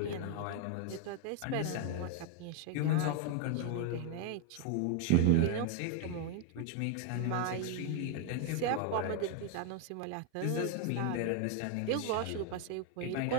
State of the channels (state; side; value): different; both; correlation 0.01